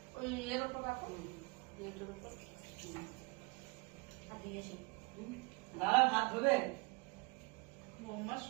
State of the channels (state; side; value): quieter; left; 27.7 dB